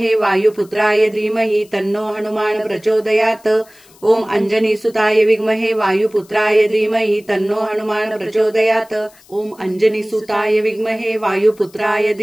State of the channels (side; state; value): left; noise; hiss, 27 dB below the sound